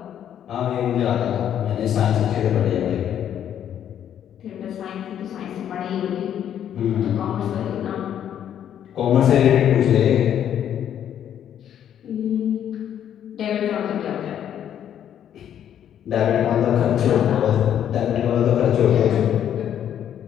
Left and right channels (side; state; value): right; quieter; 9.9 dB